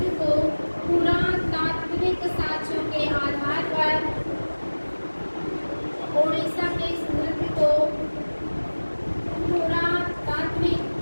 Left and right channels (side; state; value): both; inverted; correlation -1.00